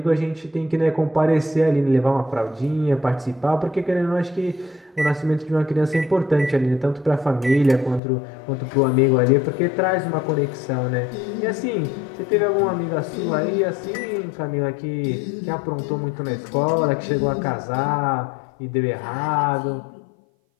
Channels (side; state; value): right; drops out; at 8.0 s